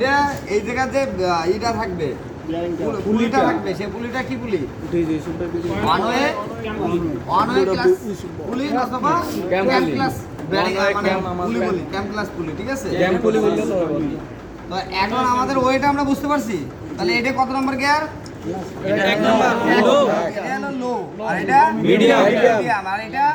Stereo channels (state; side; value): identical; both; correlation 1.00